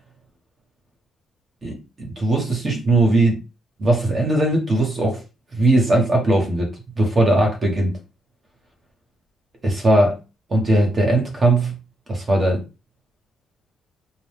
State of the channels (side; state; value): both; normal; correlation 0.79